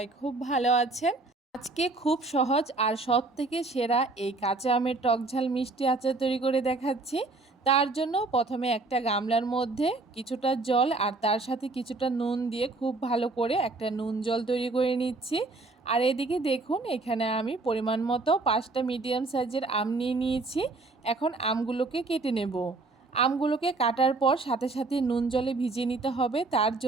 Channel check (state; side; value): quieter; left; 3.4 dB